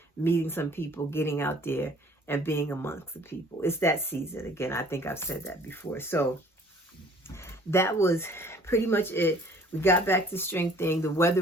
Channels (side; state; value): both; normal; correlation 0.54